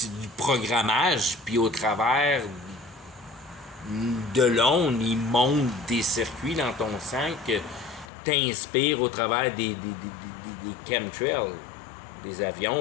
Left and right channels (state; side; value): drops out; right; at 8.1 s